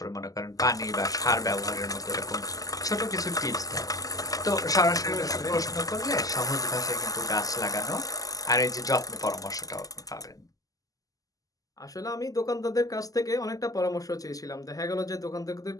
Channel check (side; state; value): right; late; 0.17 ms